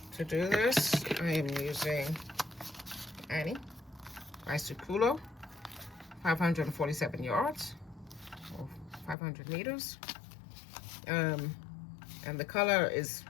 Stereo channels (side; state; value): right; drops out; at 9.2 s